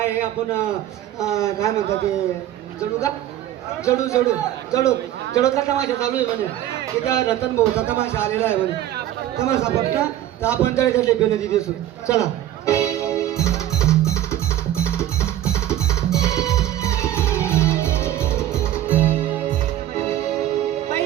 आहे आपण काय म्हणतात ते जडूचा तमाशा चालू आहे म्हणे. तिथं रतन भाऊचा तमाशा आलेला आहे म्हणे. तमाशा पटला तर आपण तळे बेनती दिसू. चला.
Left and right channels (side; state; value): left; quieter; 12.6 dB